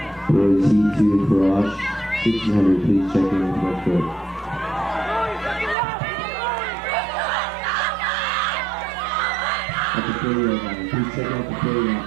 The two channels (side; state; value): left; drops out; at 5.8 s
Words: Boys heat 2, Garage, 1600, please check in with red coat. At the 40-yard line, please check out the